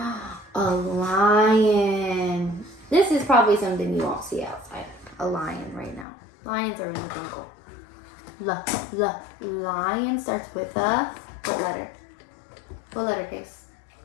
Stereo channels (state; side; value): drops out; right; at 6.1 s